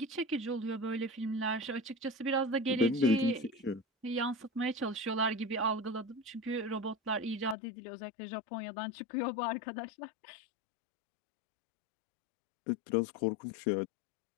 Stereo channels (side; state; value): right; drops out; at 7.6 s